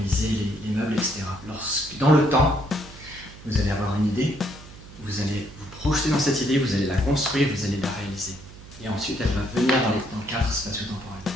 les meubles, etc. Lorsque, dans le temps, vous allez avoir une idée, vous allez vous projeter dans cette idée, vous allez la construire, vous allez la réaliser. Et ensuite, elle va venir dans le cadre spatio-temporel.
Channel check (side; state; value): right; noise; hum, 18 dB below the sound